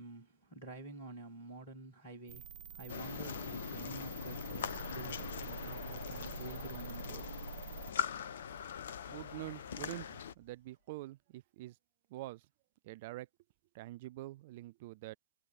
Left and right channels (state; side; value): inverted; both; correlation -0.48